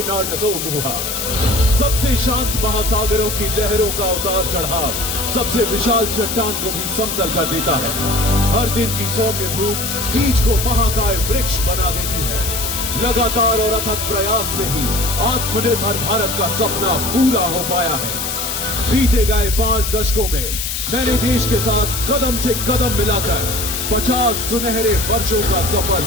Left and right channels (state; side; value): noise; left; hiss, 3 dB below the sound